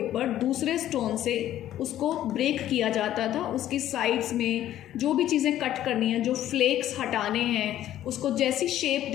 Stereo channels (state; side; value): quieter; right; 12.5 dB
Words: दूसरे स्टोन से उसको ब्रेक किया जाता था, उसकी साइड्स में जो भी चीज़ें कट करनी है, जो फ्लेक्स हटाने हैं, उसको जैसी शेप